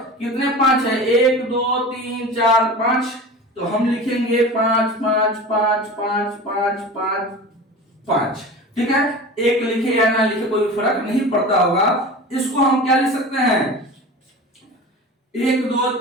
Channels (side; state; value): both; normal; correlation 0.34